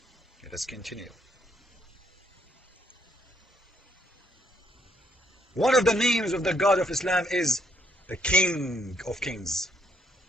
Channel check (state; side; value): normal; both; correlation 0.72